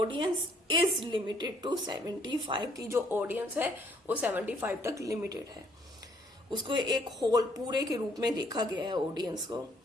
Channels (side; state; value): both; normal; correlation 0.65